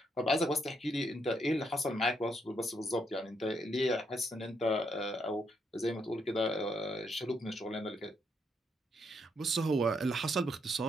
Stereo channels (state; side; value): normal; both; correlation 0.76